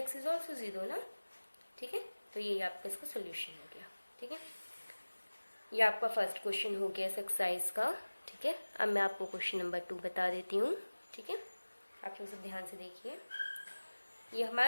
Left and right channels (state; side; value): inverted; both; correlation -1.00